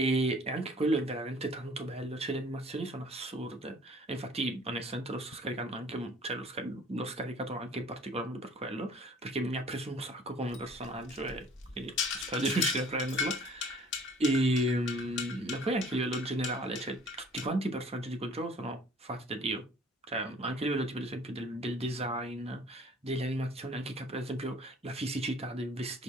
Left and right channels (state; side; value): normal; both; correlation 0.52